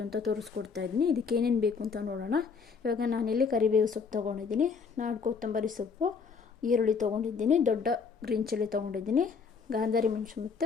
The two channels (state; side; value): quieter; right; 5.5 dB